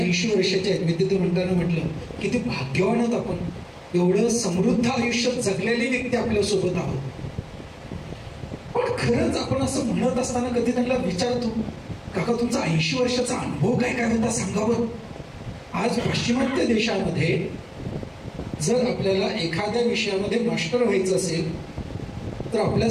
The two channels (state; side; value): identical; both; correlation 1.00